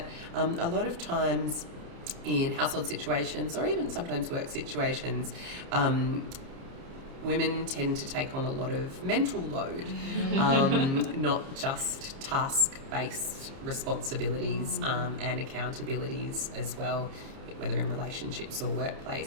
a lot of times in household situations or even sometimes work situations, women tend to take on a lot of mental load, not just task-based responsibilities and accountabilities as well, whether in relationships or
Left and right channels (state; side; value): late; left; 30 ms